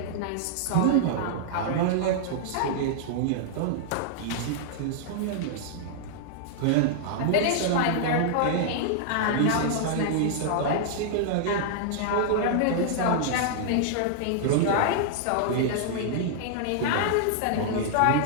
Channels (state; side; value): different; both; correlation -0.01